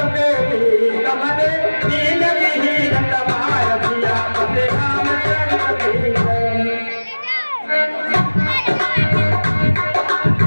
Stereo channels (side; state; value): both; inverted; correlation -1.00